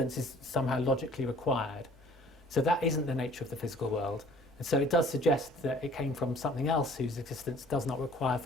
is somehow logically required. So that isn't the nature of the physical world. And so it does suggest that it came from something else whose existence does not require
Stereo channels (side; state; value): both; normal; correlation 0.53